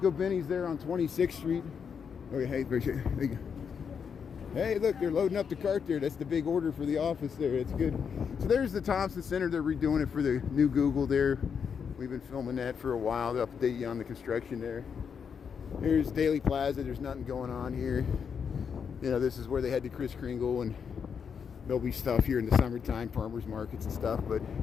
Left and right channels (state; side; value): quieter; right; 6.7 dB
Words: Benny's there on 26th Street. Okay, hey, appreciate it. Hey, look, they're loading up the cart there. That's the big order for the office there. That's good. So there's the Thompson Center. They're redoing it for the new Google there. We've been filming that for a while to update you on the construction there. Here's Daily Plaza. There's nothing going on here. You know, this is where they had the Kris Kringle, and there'll be stuff here in the summertime, farmers markets and stuff, but